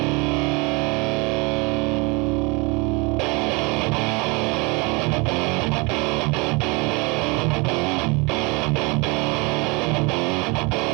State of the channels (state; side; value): quieter; left; 28.2 dB